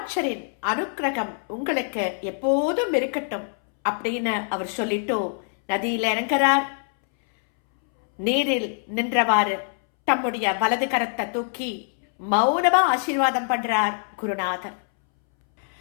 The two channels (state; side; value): silent; right; 62 dB below the other